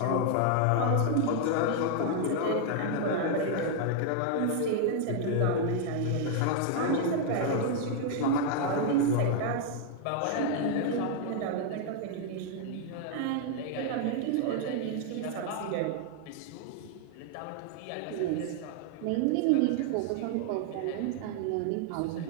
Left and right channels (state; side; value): different; both; correlation 0.00